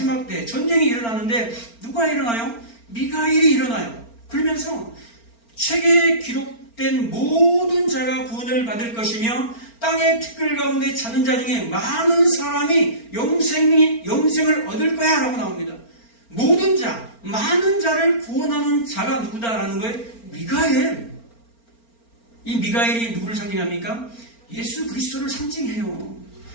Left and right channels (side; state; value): right; late; 4.4 ms